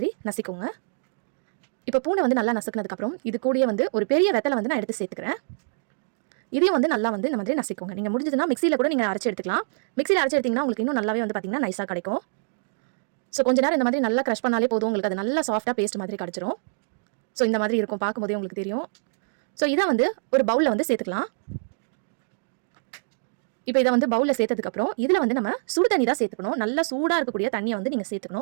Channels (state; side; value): silent; left; digital silence